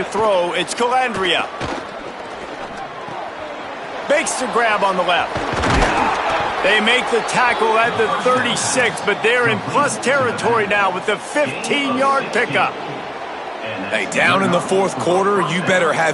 throw, it's Calandria. Makes the grab on the left. They make the tackle at the 36, but they're in plus territory now with the 15-yard pickup. Hey, down in the fourth quarter, you better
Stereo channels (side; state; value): both; identical; correlation 1.00